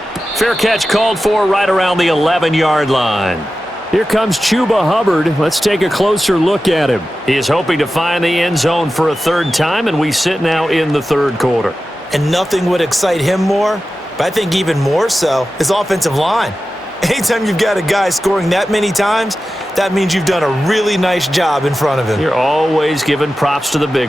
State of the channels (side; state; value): both; normal; correlation 0.94